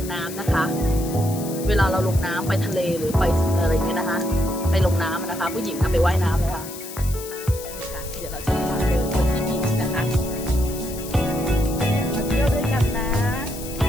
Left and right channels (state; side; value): noise; left; hiss, 12 dB below the sound